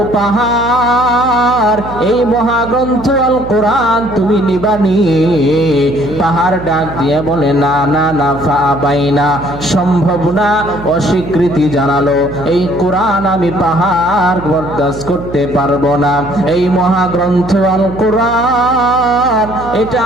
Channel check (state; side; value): noise; right; hum, 12 dB below the sound